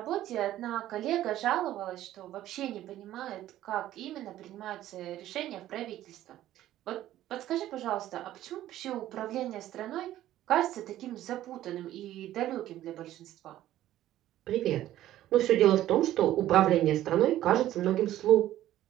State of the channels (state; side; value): quieter; left; 13.5 dB